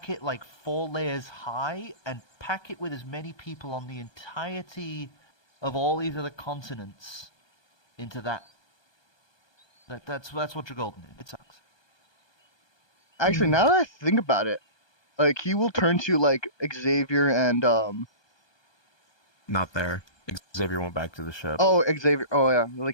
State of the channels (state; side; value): late; right; 1.2 ms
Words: it like 4 layers high and pack it with as many people on the entirety of all these other continents into that. That's what Dragolden is. It sucks. Actually, now that I think about it, like he will turn to like Xavier and Not there. Xavier went back to the ship. oh Xavier. Oh yeah,